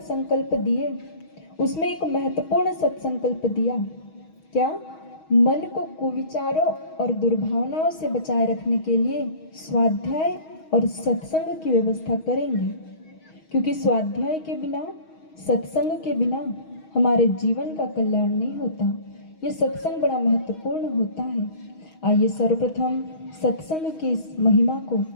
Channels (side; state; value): right; late; 6.3 ms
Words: दिए, उसमें एक महत्वपूर्ण सत्संकल्प दिया। क्या? मन को कुविचारों और दुर्भावनाओं से बचाए रखने के लिए स्वाध्याय और सत्संग की व्यवस्था करेंगे, क्योंकि स्वाध्याय के बिना, सत्संग के बिना हमारे जीवन का कल्याण नहीं होता। ये सत्संग बड़ा महत्वपूर्ण होता है। आइए सर्वप्रथम सत्संग की इस महिमा को